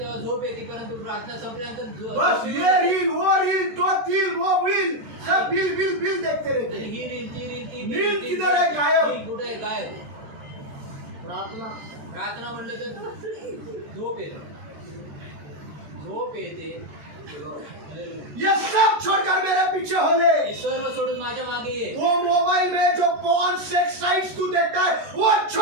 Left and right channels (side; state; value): left; late; 13 ms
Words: झोप येते, परंतु प्रार्थना संपल्यानंतर बस ये रील वो रील तो रील वो रील सब बिल देखते रहते आणि हैं। ही रील ती रील ती नींद किधर आहे? गायब. रील कुठे आहे? गायब. प्रार्थना प्रार्थना म्हणलं तर झोप येते. ये सब छोड़कर मेरे पीछे हो ले। हे सर्व सोडून माझ्या मागे ये. वो मोबाइल में जो पॉर्न सेक्स साइट्स तू देखता है वो